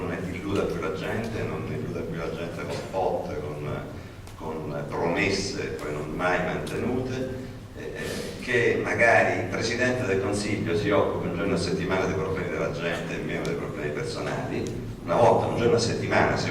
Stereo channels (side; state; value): both; identical; correlation 1.00